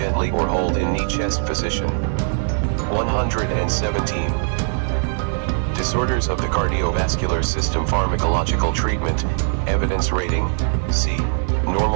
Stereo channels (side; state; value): left; silent; digital silence